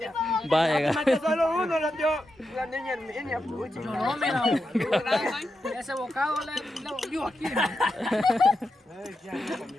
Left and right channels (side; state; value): both; normal; correlation 0.87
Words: Va a llegar. Solo uno lo dio la niña Herminia. Pucha. No, mira, ese bocado le volvió aquí.